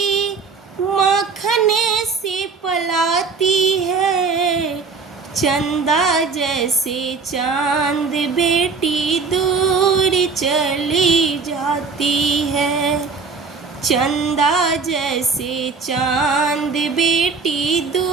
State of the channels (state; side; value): quieter; left; 4.8 dB